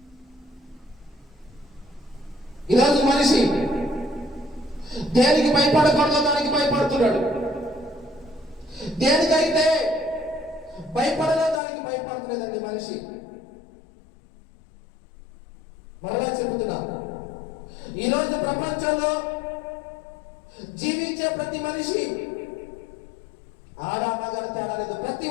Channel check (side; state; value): right; drops out; at 11.6 s